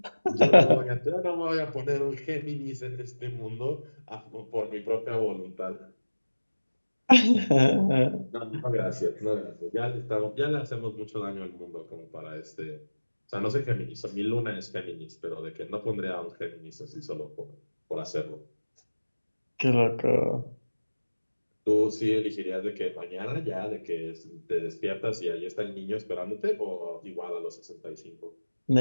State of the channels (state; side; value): inverted; both; correlation -1.00